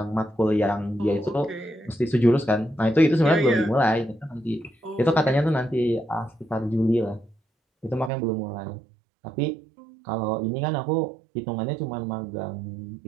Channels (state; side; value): drops out; left; at 8.1 s